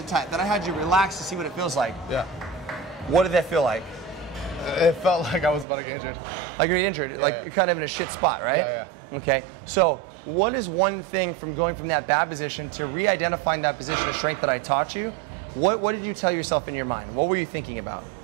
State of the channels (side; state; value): left; drops out; at 5.7 s